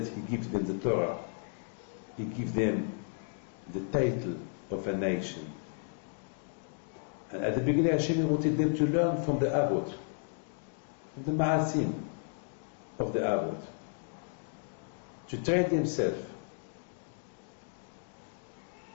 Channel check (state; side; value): silent; right; 55 dB below the other